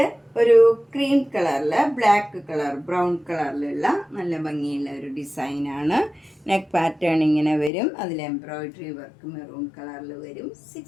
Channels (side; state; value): right; drops out; at 7.7 s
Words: ഒരു ക്രീം കളറിൽ ബ്ലാക്ക് കളർ ബ്രൗൺ കളറിലുള്ള നല്ല ഭംഗിയുള്ള ഒരു ഡിസൈനാണ്. നെക്ക് പാറ്റേൺ ഇങ്ങനെ വരും. അതിൽ എംബ്രോയിഡറി വർക്ക് മെറൂൺ കളറിൽ വരും.